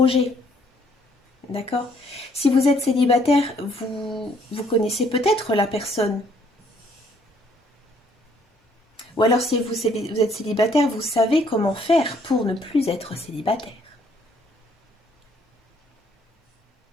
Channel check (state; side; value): normal; both; correlation 0.65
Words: D'accord? Si vous êtes célibataire, vous connaissez peut-être la personne. Ou alors si vous êtes célibataire, vous savez comment faire pour ne plus être célibataire.